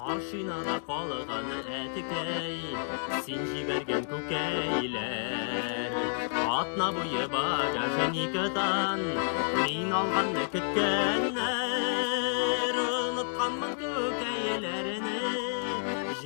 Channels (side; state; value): right; silent; digital silence